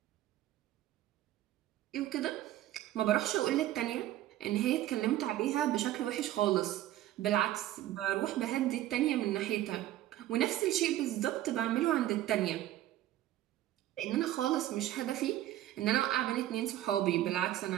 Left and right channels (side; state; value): left; quieter; 13.9 dB